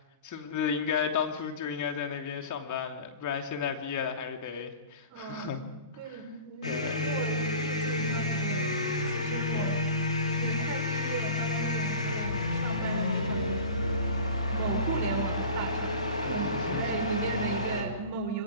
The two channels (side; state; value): both; inverted; correlation -0.39